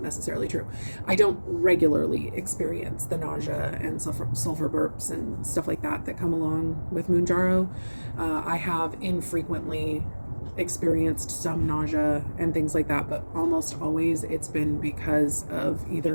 necessarily true. I don't regularly experience the nausea and sulfur burps and stuff like that come along with Mounjaro. I have infrequently experienced some nausea and things like that, but almost always it's been because of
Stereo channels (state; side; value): inverted; both; correlation -1.00